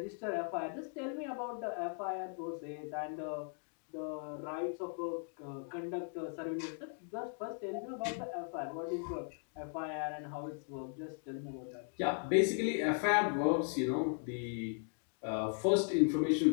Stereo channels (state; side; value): silent; right; 53 dB below the other